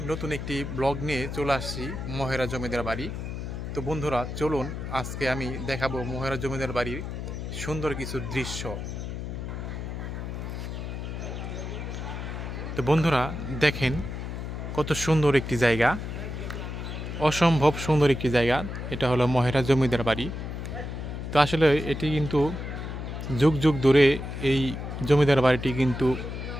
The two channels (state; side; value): noise; left; hum, 6 dB below the sound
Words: নতুন একটি ব্লগ নিয়ে চলে আসছি মহেরা জমিদার বাড়ি। তো বন্ধুরা, চলুন আজকে আমি দেখাবো মহেরা জমিদার বাড়ির সুন্দর কিছু দৃশ্য। তো বন্ধুরা দেখেন, কত সুন্দর একটি জায়গা, অসম্ভব সুন্দর একটি জায়গা। এটা হলো মহেরা জমিদার বাড়ি। তো আসলে এটি কিন্তু যুগ যুগ ধরে এই জমিদার বাড়িটি কিন্তু